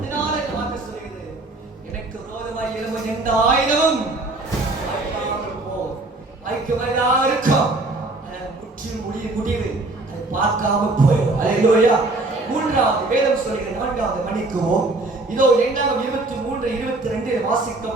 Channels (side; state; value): left; quieter; 3.0 dB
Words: இதனால இந்த வார்த்தை சொல்கிறது, எனக்கு விரோதமாய் எழும்பும் எந்த ஆயுதமும் வாய்க்காமல் போகும். வாய்க்கவதா இருக்கும், முற்றிலும் முடிவு அதை பார்க்காம போயிடும். அல்லேலூயா. மூன்றாவது வேதம் சொல்கிற 4வது மணிக்குவோம். இதோ 23:22 வாசிக்கும்